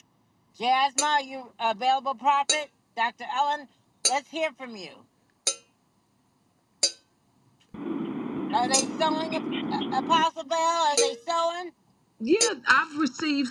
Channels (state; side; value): identical; both; correlation 1.00